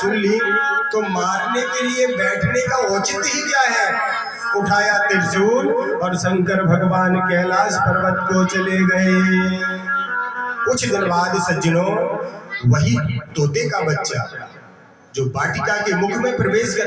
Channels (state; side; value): identical; both; correlation 1.00